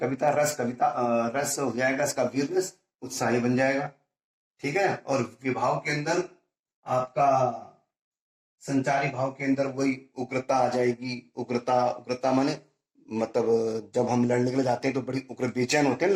रस हो जाएगा इसका वीर रस, उत्साही बन जाएगा। ठीक है, और विभाव के अंदर आपका संचारी भाव के अंदर वही उग्रता आ जाएगी। उग्रता माने मतलब जब हम लड़ने के लिए जाते हैं तो बड़ी उग्र बेचैन होते हैं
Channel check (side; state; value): both; identical; correlation 1.00